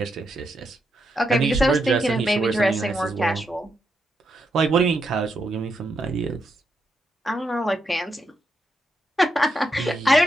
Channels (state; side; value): normal; both; correlation 0.82